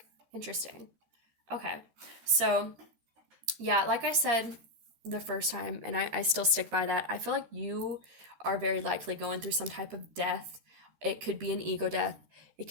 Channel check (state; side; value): late; left; 13 ms